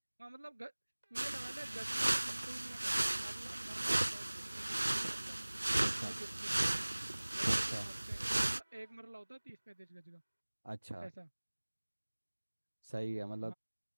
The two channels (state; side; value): inverted; both; correlation -1.00